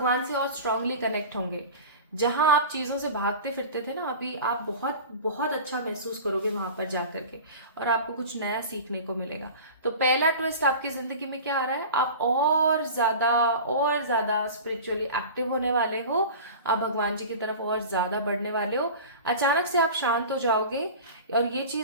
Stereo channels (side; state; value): both; inverted; correlation -0.35